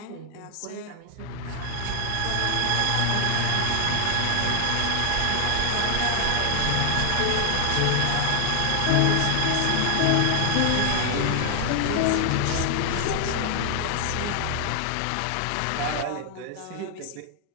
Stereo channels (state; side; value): different; both; correlation 0.00